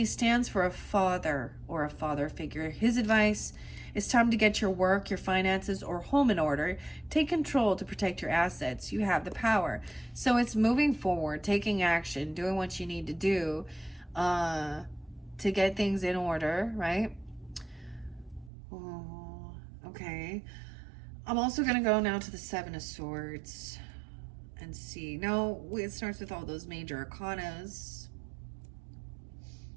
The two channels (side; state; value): left; drops out; at 18.5 s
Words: stands for a father or a father figure. His advice: it's time to get your work, your finances, or home in order. Take control to protect your assets. You have the power. So it's moving forward, taking action, doing what you need to do to get things in order, right? Oh, okay. I'm also going to go now to the Seven of Swords and see. No, it starts with all those major arcanas.